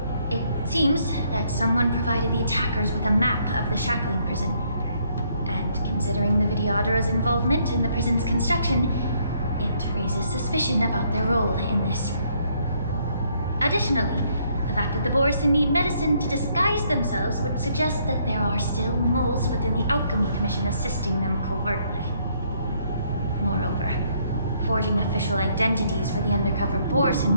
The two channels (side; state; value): both; inverted; correlation -0.69